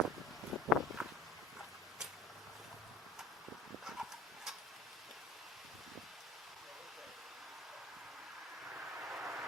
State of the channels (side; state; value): both; normal; correlation 0.43